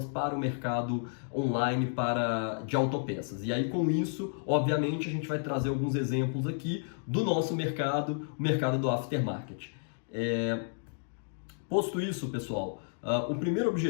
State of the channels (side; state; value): right; silent; digital silence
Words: para o mercado online de autopeças. E aí com isso, obviamente, a gente vai trazer alguns exemplos aqui do nosso mercado, o mercado do aftermarket. Posto isso, pessoal, o primeiro